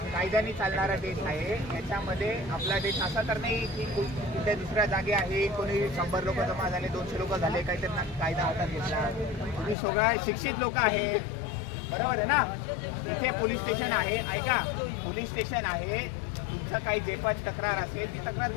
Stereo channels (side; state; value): right; drops out; at 9.8 s